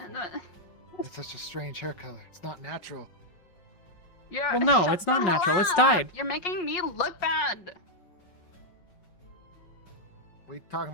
It's such a strange hair color. It's not natural. Yeah. Well, no, shut it's not the natural. hell It's up. dyed. You're making me look bad. What are you talking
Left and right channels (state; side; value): late; right; 5.4 ms